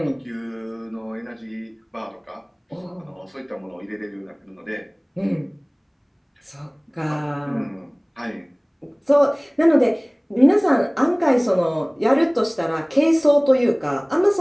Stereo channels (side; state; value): both; identical; correlation 1.00